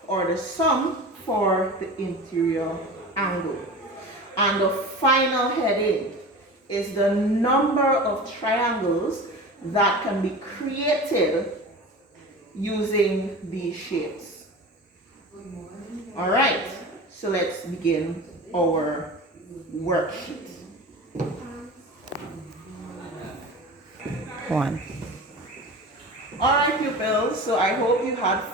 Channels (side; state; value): both; normal; correlation 0.33